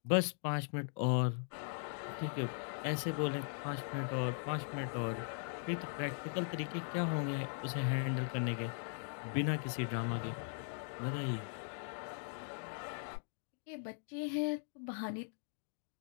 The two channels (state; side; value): silent; right; digital silence